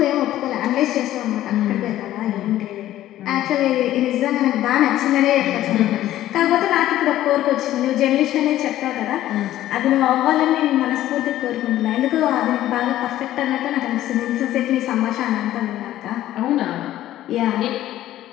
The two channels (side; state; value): right; quieter; 13.7 dB